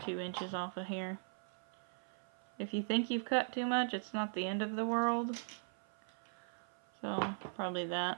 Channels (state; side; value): silent; left; 51 dB below the other